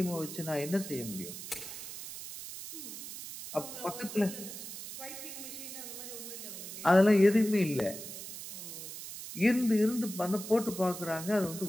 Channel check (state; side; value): noise; right; hiss, 10 dB below the sound